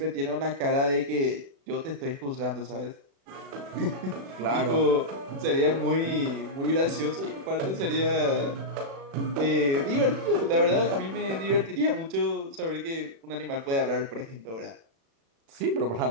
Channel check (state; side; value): late; left; 36 ms